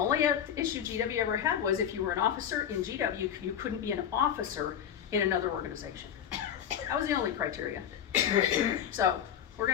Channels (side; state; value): right; quieter; 9.2 dB